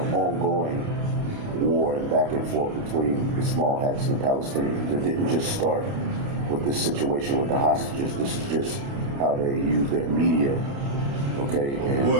ongoing war and back and forth between the small hats and the Palestinians. It didn't just start with this situation with the hostages. This is just how they use their media. Okay, and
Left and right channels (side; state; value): left; late; 29 ms